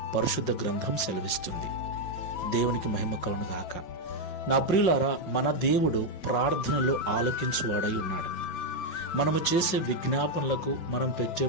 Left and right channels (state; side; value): late; right; 5.5 ms